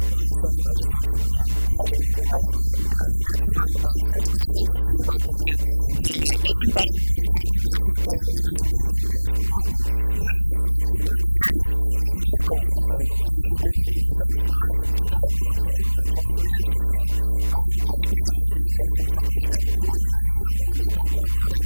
course, and I just mentioned we have had your lovely wife on not too long ago, so it's always great to see both of you. Even better when we're talking about something as amazing as Kiwanis. Yes, absolutely. Yes. Love Kiwanis. I've actually been a member myself since 2001, so 23 years this year. I'm a past president, and I also was the first ever Kiwanian of the Year when they brought that award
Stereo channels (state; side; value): inverted; both; correlation -1.00